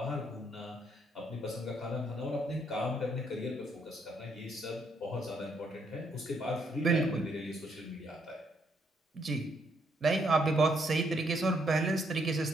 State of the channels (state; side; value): normal; both; correlation 0.72